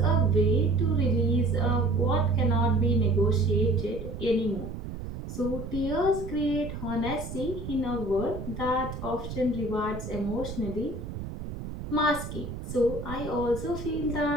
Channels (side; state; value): right; noise; rumble, 8 dB below the sound